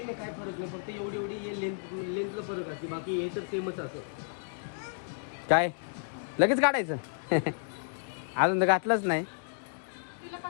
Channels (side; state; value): right; silent; digital silence